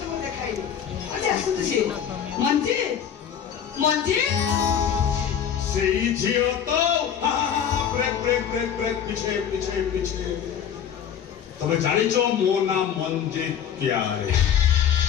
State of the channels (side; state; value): right; quieter; 8.6 dB